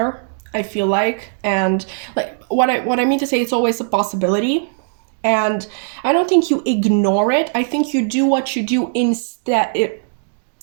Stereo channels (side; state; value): left; silent; digital silence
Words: I feel like. And like what I mean to say, it's always a possibility. And I don't think you ignore it. I think you do what you do instead.